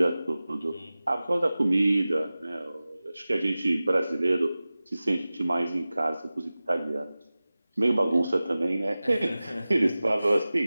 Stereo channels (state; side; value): inverted; both; correlation -0.97